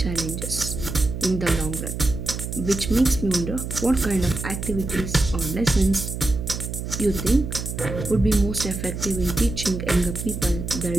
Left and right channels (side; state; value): right; noise; hum, 6 dB below the sound